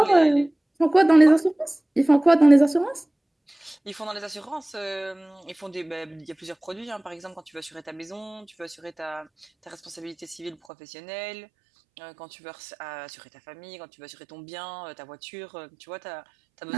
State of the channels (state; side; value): drops out; left; at 10.6 s